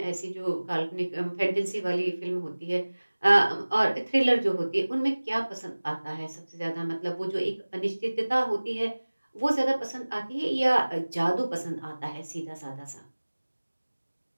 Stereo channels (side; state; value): both; inverted; correlation -1.00